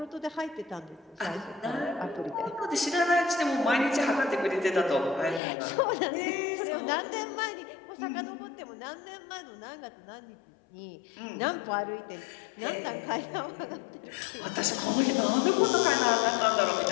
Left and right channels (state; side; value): drops out; right; at 5.4 s